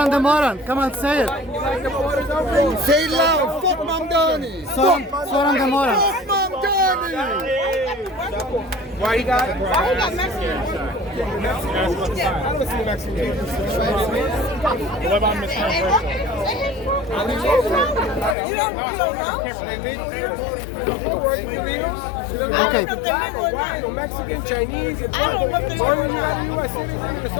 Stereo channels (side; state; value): right; drops out; at 18.4 s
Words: the moron, come on, say it. You like the borders open? Say it loud. Fuck Mamdani. Zhoran the moron. Fuck Mamdani. Why you got? Why you got Mexican? I don't see Mexican. What about Mexican? You don't know? Okay. White or Mexican, Chinese, as long as you got a U.S. citizen with a